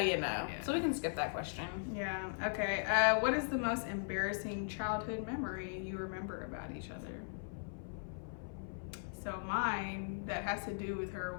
know. Yeah. So we can skip that question. Yeah. Okay. What is the most embarrassing childhood memory you remember about each other? So mine, that has to do with her,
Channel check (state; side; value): silent; right; 52 dB below the other